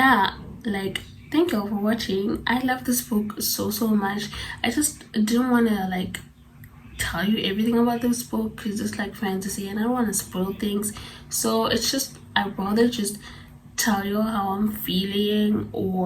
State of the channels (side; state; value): both; identical; correlation 1.00